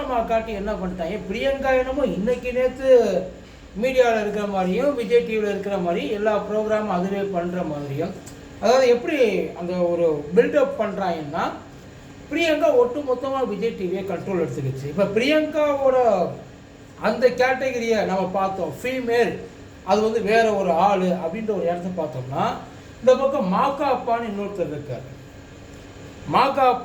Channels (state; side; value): identical; both; correlation 1.00